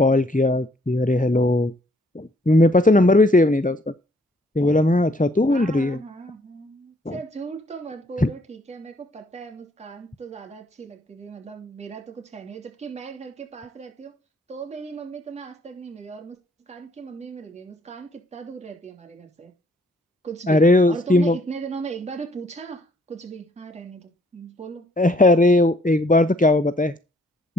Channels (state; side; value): normal; both; correlation 0.64